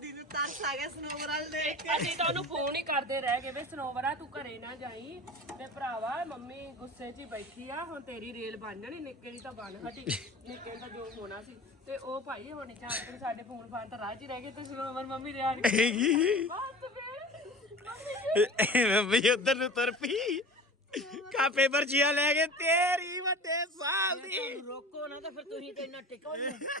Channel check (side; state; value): both; normal; correlation 0.37